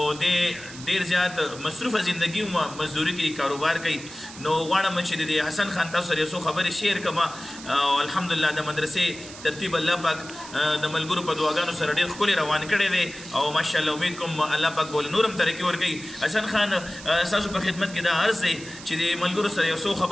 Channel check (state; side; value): noise; right; hiss, 15 dB below the sound